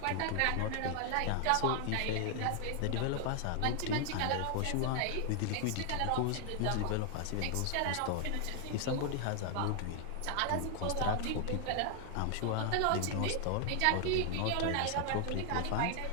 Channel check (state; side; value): different; both; correlation 0.00